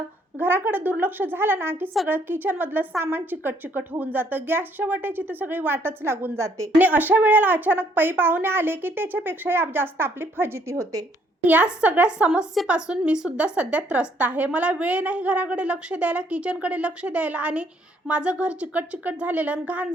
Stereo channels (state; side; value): normal; both; correlation 0.67